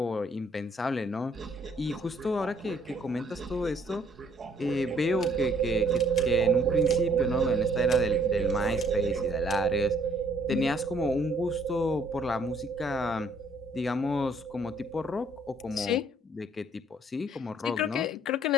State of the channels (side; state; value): both; normal; correlation 0.63